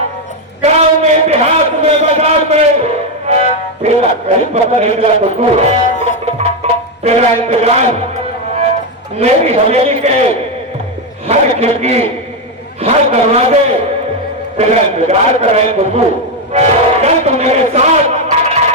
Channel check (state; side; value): normal; both; correlation 0.06